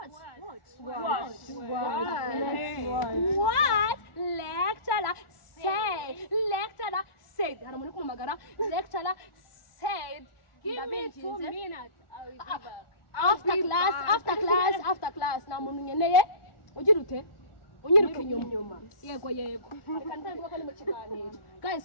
What lecturer said? Lecturer said. Hari umuntu kumagara. Lecturer said. Give me 2 minutes. I will be back. After class. Na muntu nyeneye. Ugira ute? Unyiruka inyuma. Yego. Reka ntangira ko ni mu kiganiro.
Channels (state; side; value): late; right; 1.4 ms